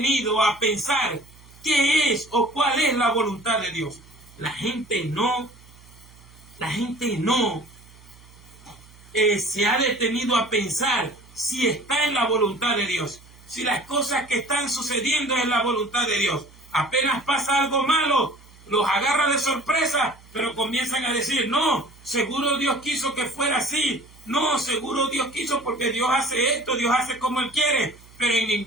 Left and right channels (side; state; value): right; noise; hum, 24 dB below the sound